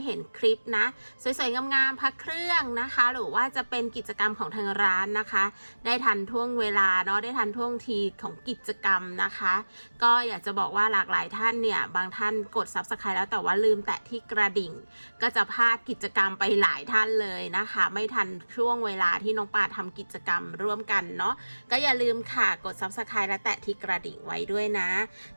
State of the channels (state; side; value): inverted; both; correlation -1.00